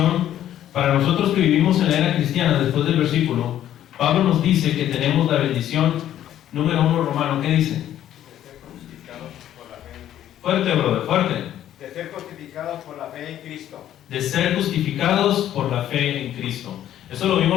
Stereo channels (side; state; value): right; quieter; 11.6 dB